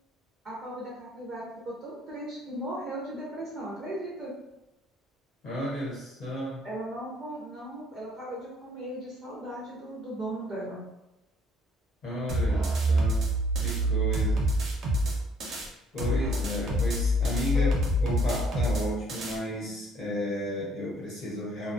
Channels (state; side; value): normal; both; correlation 0.63